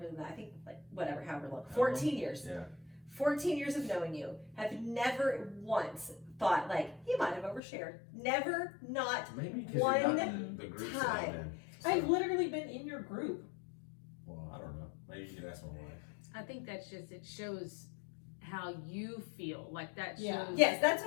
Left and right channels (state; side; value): drops out; right; at 7.6 s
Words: than that. I think like whatever, however long. 14 years. Yeah. 14 years of knowing you, have never once thought like you might have overshared. Never, not maybe because one you're not in the groups that I'm in. So. I've literally been in your group. Well, I don't know. Maybe you can ask my wife. I think that's just, it shows how you feel. Like that shows. Yeah. Yes, that's